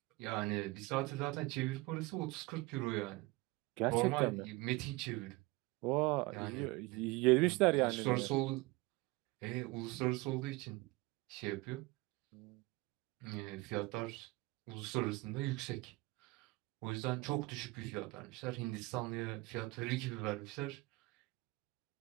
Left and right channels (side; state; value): left; quieter; 22.6 dB